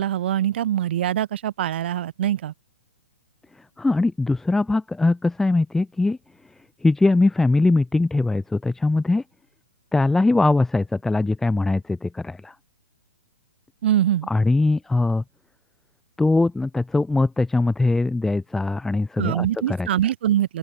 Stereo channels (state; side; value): normal; both; correlation 0.70